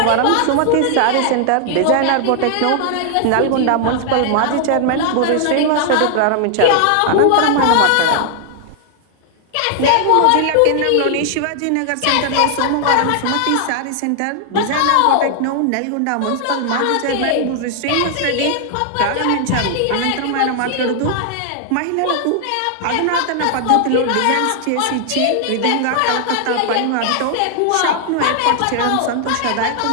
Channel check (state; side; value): different; both; correlation 0.00